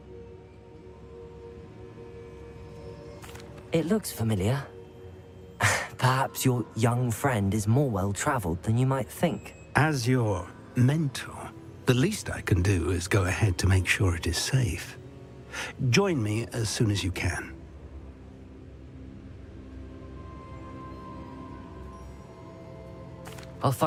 It looks familiar. Perhaps your young friend is more well-traveled than you might think. As your mentor, the least I can do is go ahead to make sure it is safe. Join me as soon as you can. I'll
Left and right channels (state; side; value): identical; both; correlation 1.00